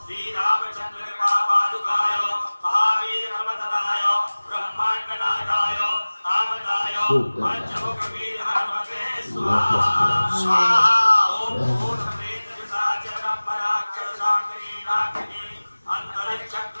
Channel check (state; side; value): inverted; both; correlation -1.00